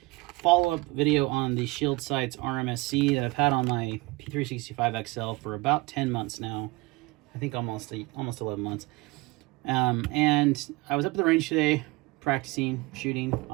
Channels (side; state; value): left; quieter; 23.0 dB